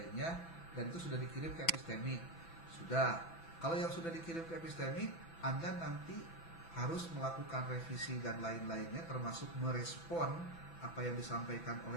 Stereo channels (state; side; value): late; right; 6.0 ms